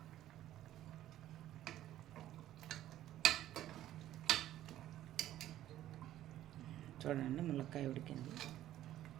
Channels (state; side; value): quieter; left; 13.1 dB